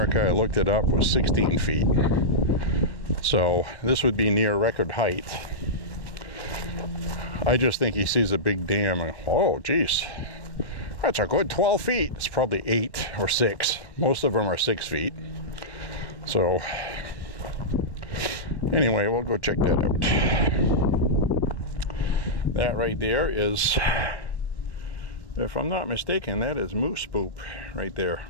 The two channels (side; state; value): right; late; 1.1 ms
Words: I looked it up, was 16 feet. So this would be near record height. I just think he sees a big dam and, oh geez, That's a good 12 feet. It's probably 8 or 6. Most of them are 6 feet. So anyway, we'll go check that out. That right there is, if I'm not mistaken, that is moose poop right there.